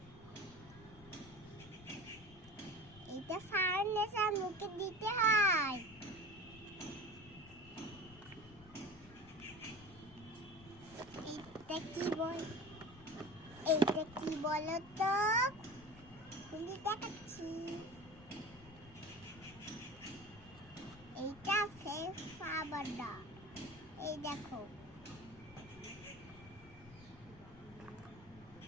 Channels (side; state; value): left; noise; rumble, 20 dB below the sound